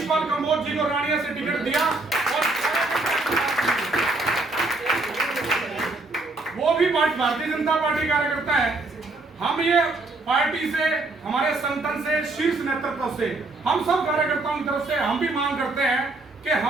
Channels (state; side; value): quieter; left; 3.1 dB